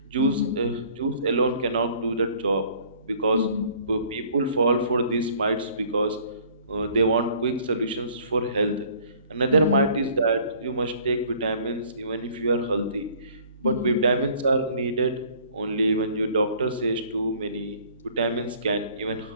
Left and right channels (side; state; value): both; inverted; correlation -0.55